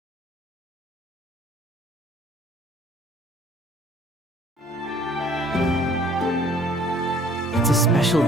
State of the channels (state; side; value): normal; both; correlation 0.56